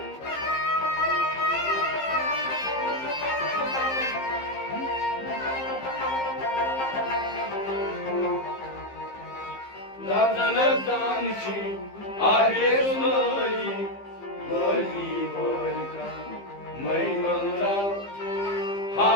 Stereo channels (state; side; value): late; right; 15 ms